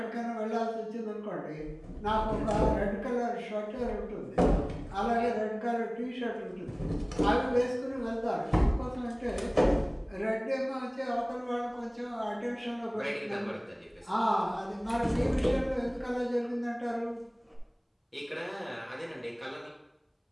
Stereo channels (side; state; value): both; identical; correlation 1.00